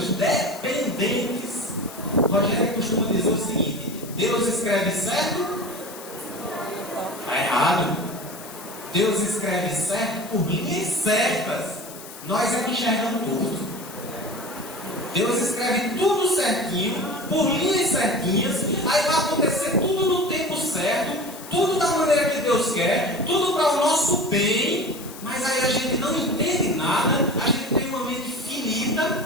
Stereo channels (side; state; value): left; noise; hiss, 15 dB below the sound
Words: dependentes. Rogério costuma dizer o seguinte: Deus escreve certo, está errado. Deus escreve certo por linhas certas. Nós é que enxergamos tudo. Deus escreve tudo certinho, por linhas certinhas. Aí vai acontecer tudo no tempo certo, tudo da maneira que Deus quer, tudo para o nosso bem. Mas aí a gente não entende nada, a gente tem uma mente finita,